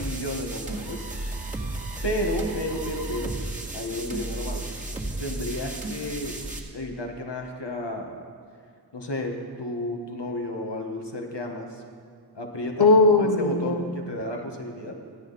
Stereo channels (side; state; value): both; normal; correlation -0.05